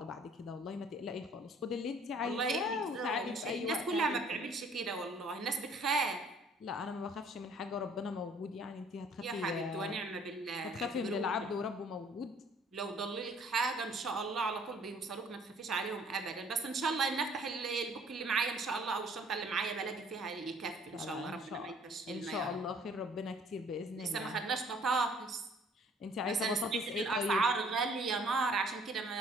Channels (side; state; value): both; normal; correlation 0.57